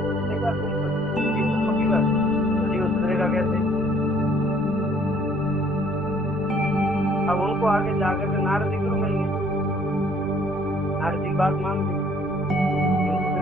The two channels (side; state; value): both; normal; correlation 0.60